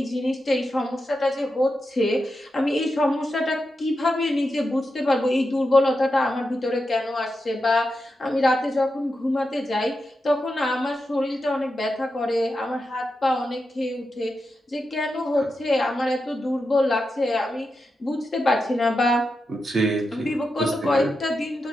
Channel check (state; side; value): normal; both; correlation 0.88